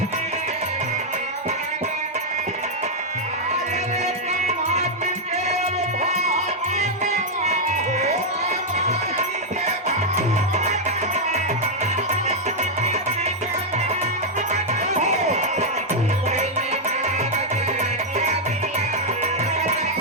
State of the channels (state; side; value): normal; both; correlation -0.02